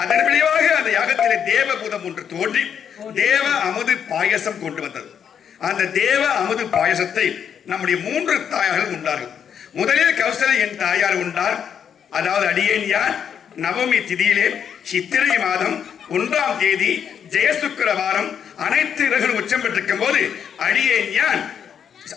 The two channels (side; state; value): right; quieter; 8.0 dB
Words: அதன் விளைவாக அந்த யாகத்திலே தேவபூதம் ஒன்று தோன்றி தேவ அமுது பாயசம் கொண்டு வந்தது. அந்த தேவ அமுது பாயசத்தை நம்முடைய 3 தாயார்கள் உண்டார்கள். முதலில் கௌசலை என் தாயார் உண்டார். அதாவது அடியேன் யார் நவமி திதியிலே சித்திரை மாதம் 1ஆம் தேதி ஜெயசுக்கிர வாரம் அனைத்து கிரகங்களும் உச்சம் பெற்றிருக்கும் போது அடியேன் யான்